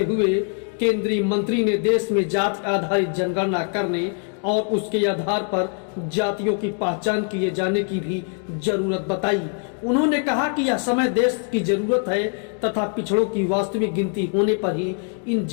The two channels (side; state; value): right; quieter; 39.5 dB